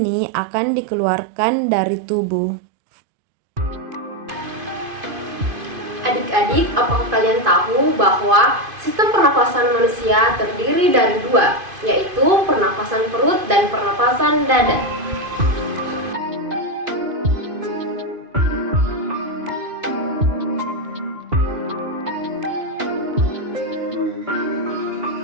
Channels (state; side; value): late; left; 2.5 ms